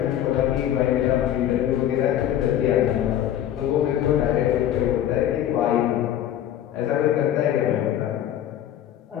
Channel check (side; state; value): right; quieter; 11.2 dB